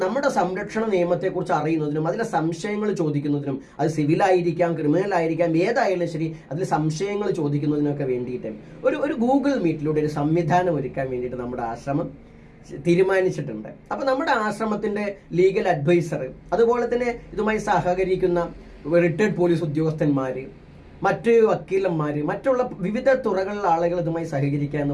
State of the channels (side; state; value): both; identical; correlation 1.00